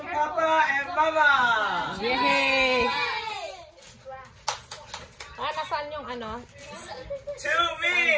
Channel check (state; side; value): identical; both; correlation 1.00